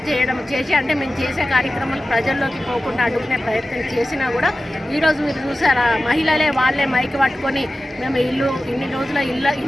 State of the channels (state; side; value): normal; both; correlation 0.94